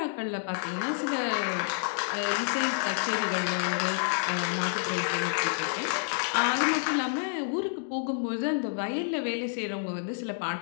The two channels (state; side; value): silent; right; digital silence